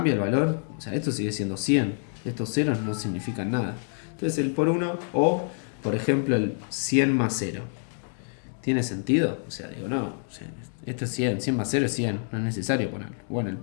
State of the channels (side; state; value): right; silent; 56 dB below the other